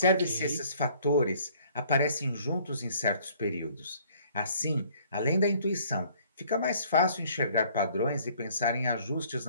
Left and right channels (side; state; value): both; inverted; correlation -0.58